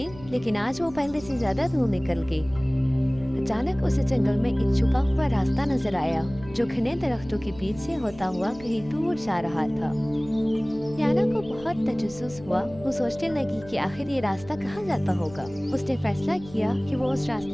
लेकिन आज वो पहले से ज्यादा दूर निकल गई। अचानक उसे जंगल में एक छुपा हुआ रास्ता नजर आया, जो घने दरख्तों के बीच से होता हुआ कहीं दूर जा रहा था। लियाना को बहुत तजस्सुस हुआ। वो सोचने लगी कि आखिर ये रास्ता कहाँ जाता होगा। उसने फैसला किया कि वो उस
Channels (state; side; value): noise; left; hum, 18 dB below the sound